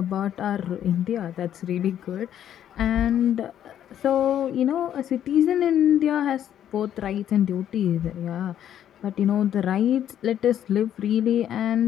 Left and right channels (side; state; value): right; quieter; 10.4 dB